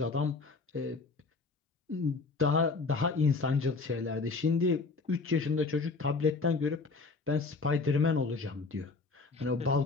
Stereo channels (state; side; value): quieter; right; 4.1 dB